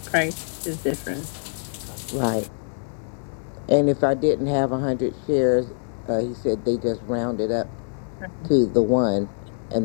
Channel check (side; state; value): right; silent; digital silence